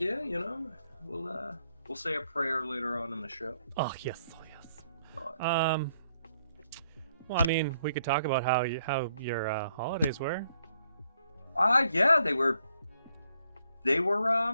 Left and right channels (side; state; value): both; inverted; correlation -0.72